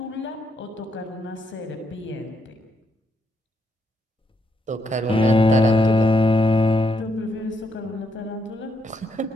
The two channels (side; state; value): both; normal; correlation 0.78